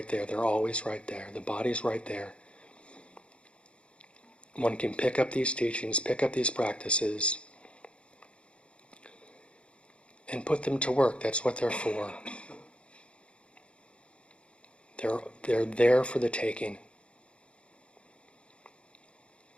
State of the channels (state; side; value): late; right; 0.059 ms